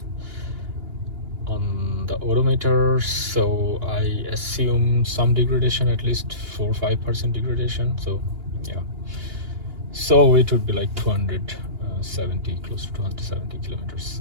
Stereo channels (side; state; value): left; late; 2.8 ms